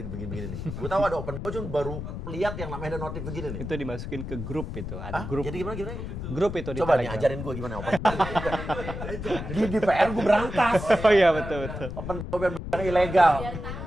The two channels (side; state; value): left; noise; rumble, 7 dB below the sound